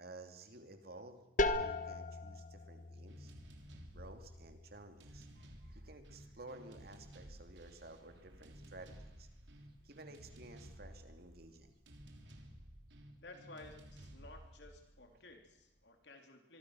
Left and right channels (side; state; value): both; normal; correlation 0.15